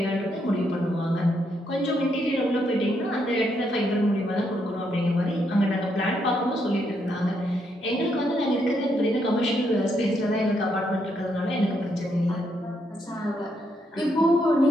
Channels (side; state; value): both; normal; correlation 0.77